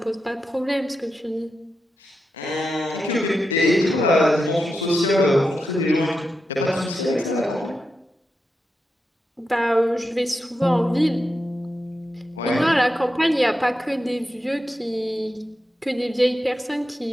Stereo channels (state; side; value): normal; both; correlation 0.88